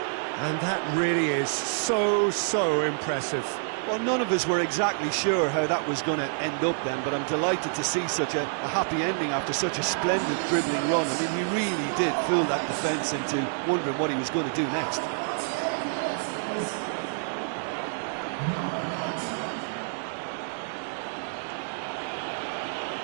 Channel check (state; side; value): silent; left; digital silence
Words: And that really is so impressive. Well, none of us were exactly sure how that was going to end up then, but I'm delighted to see such a happy ending after such a splendid dribbling run. I mean, he really did fool that defence into wondering what he was going to do next.